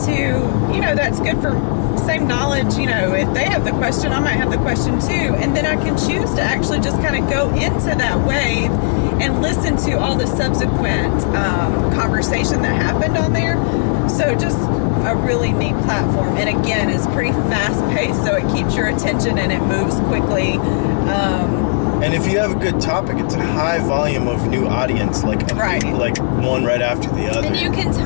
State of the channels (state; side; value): silent; right; 62 dB below the other